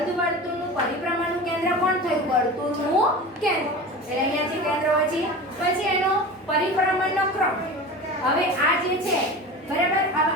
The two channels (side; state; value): both; normal; correlation 0.32